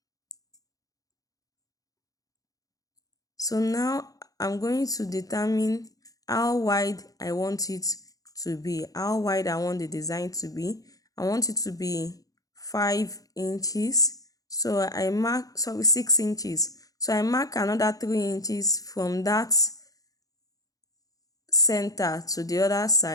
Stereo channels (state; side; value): late; right; 0.17 ms